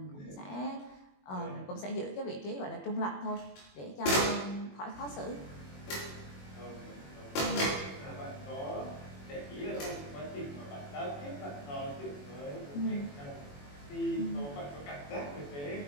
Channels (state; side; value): late; right; 21 ms